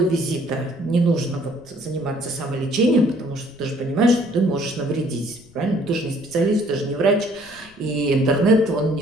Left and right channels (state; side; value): noise; left; rumble, 27 dB below the sound